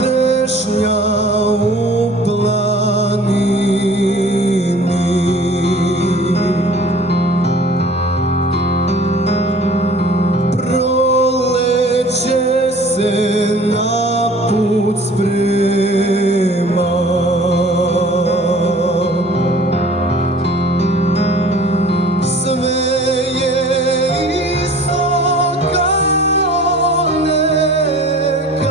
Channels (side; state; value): both; normal; correlation 0.48